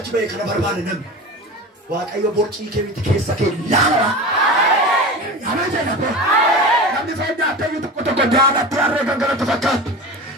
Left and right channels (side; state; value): both; normal; correlation 0.31